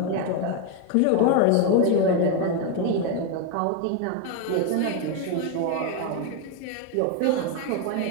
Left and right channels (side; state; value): both; different; correlation 0.01